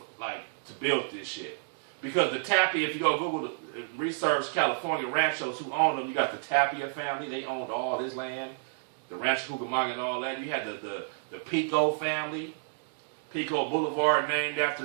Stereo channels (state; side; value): silent; left; digital silence